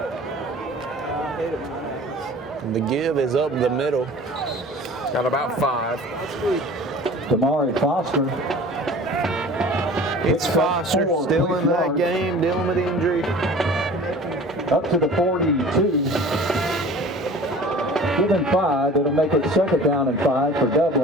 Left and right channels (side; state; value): both; normal; correlation 0.44